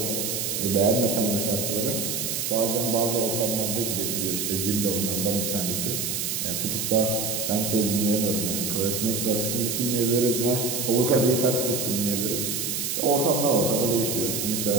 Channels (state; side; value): noise; right; hiss, 1 dB below the sound